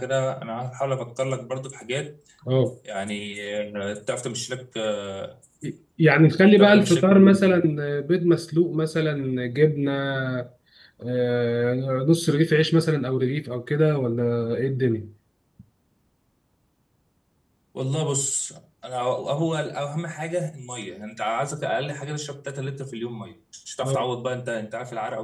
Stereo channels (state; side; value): identical; both; correlation 1.00